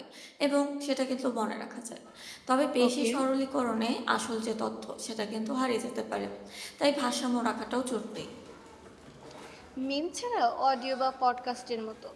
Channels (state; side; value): identical; both; correlation 1.00